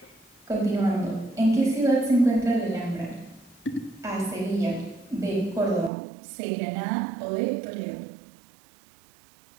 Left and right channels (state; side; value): drops out; left; at 5.9 s